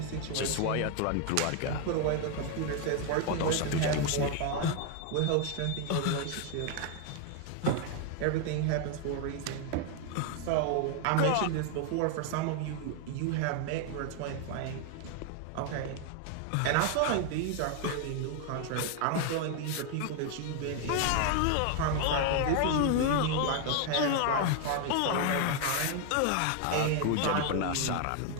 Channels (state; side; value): different; both; correlation 0.01